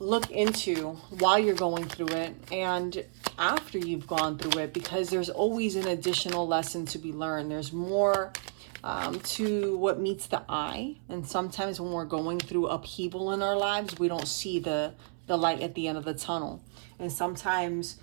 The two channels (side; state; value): left; silent; 57 dB below the other